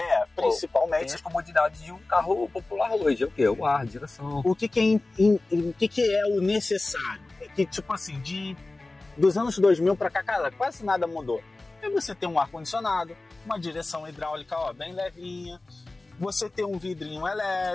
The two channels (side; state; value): right; quieter; 3.1 dB